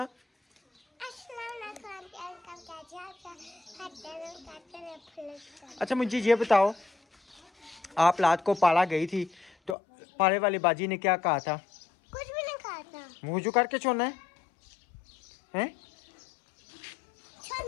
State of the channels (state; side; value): drops out; right; at 9.8 s